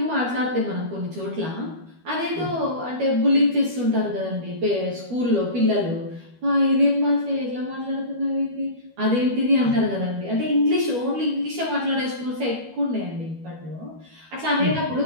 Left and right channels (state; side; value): late; left; 12 ms